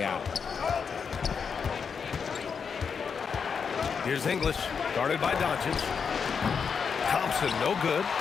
out. Here's English, guarded by Doncic. Thompson, no good.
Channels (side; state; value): right; quieter; 6.2 dB